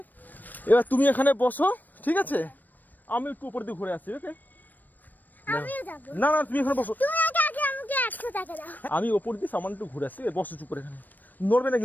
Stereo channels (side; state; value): right; late; 0.087 ms